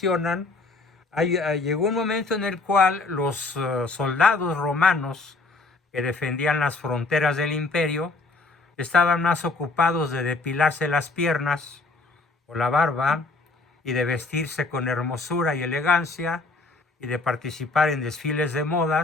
llegó un momento en el cual los soldados romanos que defendían las fronteras del imperio estaban más ocupados de depilarse las piernas o la barba y de vestirse con hermosura y elegancia y de participar en desfiles de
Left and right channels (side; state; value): right; quieter; 3.6 dB